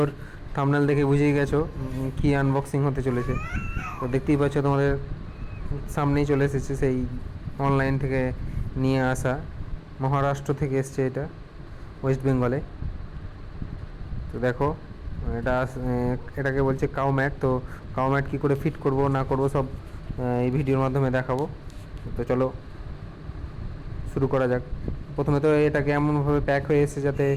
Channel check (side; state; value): both; identical; correlation 1.00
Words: thumbnail দেখে বুঝেই গেছো কি আনবক্সিং হতে চলেছে। তো দেখতেই পাচ্ছ তোমাদের সামনেই চলে এসেছে সেই অনলাইন থেকে নিয়ে আসা, মহারাষ্ট্র থেকে এসছে এটা, ওয়েস্ট বেঙ্গলে। তো দেখো এটা এটাকে বলছে কাউ ম্যাট। তো কাউ ম্যাট কী করে ফিট করব না করব সব এই ভিডিওর মাধ্যমে দেখাবো। তো চলো শুরু করা যাক। প্রথমে তো এটাকে এমনভাবে প্যাক হয়ে এসেছে যাতে